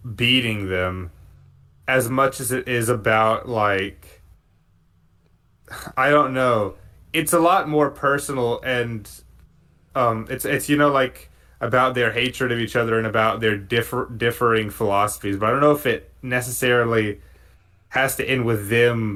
beating them as much as it is about like I don't know. It's a lot more personal and it's like about their hatred of each other and about their differing philosophies. But I don't know if it necessarily has to end with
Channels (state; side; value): identical; both; correlation 1.00